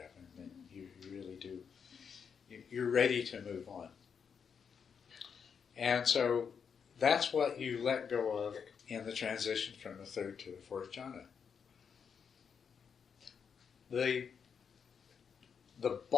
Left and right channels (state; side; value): quieter; right; 6.7 dB